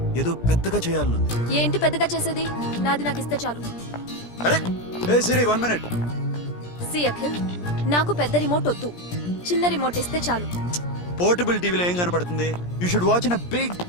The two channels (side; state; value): right; late; 17 ms